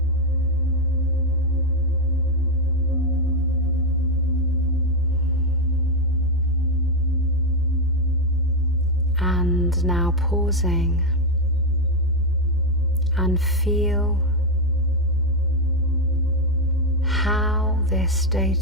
And now pausing and feel how this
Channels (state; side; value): noise; left; rumble, 26 dB below the sound